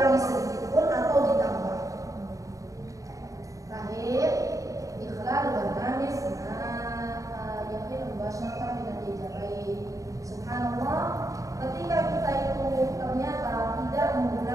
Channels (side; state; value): left; late; 0.16 ms